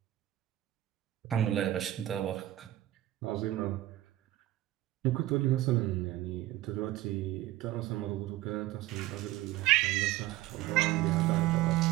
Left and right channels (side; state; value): left; quieter; 15.4 dB